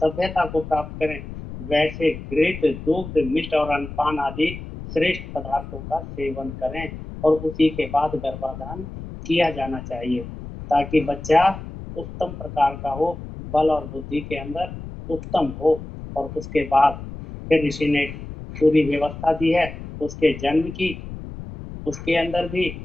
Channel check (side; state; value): left; noise; rumble, 11 dB below the sound